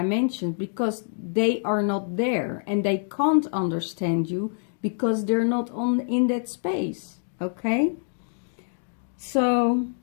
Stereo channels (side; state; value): right; silent; 61 dB below the other